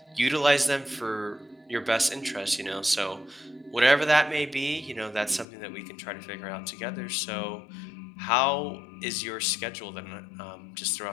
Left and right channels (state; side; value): drops out; right; at 5.5 s